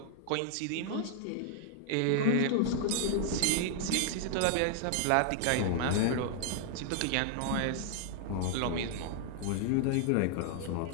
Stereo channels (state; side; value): different; both; correlation 0.00